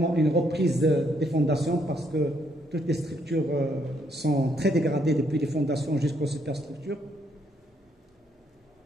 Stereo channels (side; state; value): both; normal; correlation 0.72